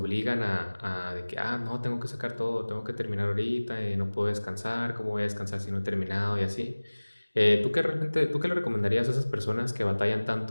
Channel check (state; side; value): inverted; both; correlation -1.00